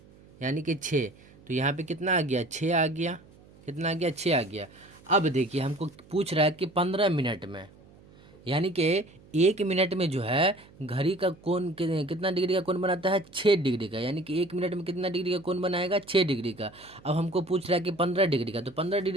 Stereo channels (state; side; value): noise; right; hum, 25 dB below the sound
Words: यानी कि 6। तो यहाँ पे कितना आ गया, 6 आ गया। कितना आ गया, 6 आ गया। अब देखिए हमको पूछ रहा है कि 15 मिनट में, यानी कि 1 मिनट में जो है घड़ी का कोण कितना डिग्री का कोण बनाता है, 6 डिग्री का। यानी कि 1 मिनट में कितना डिग्री का कोण बनाएगा, 6 डिग्री का। अब हमको पूछ रहा है कि 15 डिग्री का, तो 15